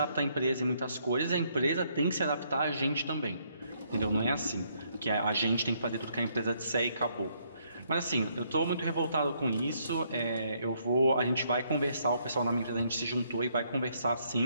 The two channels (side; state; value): both; inverted; correlation -0.71